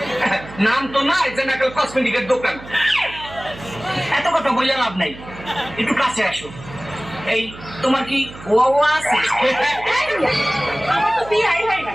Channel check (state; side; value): noise; right; hum, 16 dB below the sound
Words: নাম তো নাই যে নাকাল কসমেটিকের দোকান। এত কথা বললে লাভ নাই, একটু কাছে আসো। এই তোমার কি ওয়া আছে? আমার তো বিয়াই হয় না,